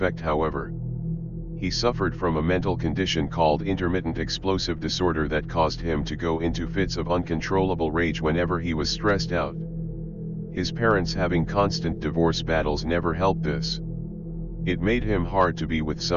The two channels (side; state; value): both; identical; correlation 1.00